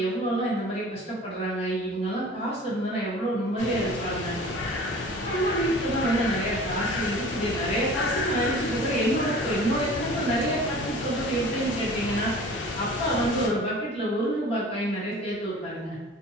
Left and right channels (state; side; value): normal; both; correlation 0.43